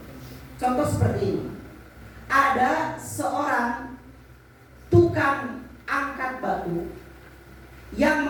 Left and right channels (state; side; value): identical; both; correlation 1.00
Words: Contoh seperti ini. Ada seorang tukang angkat batu yang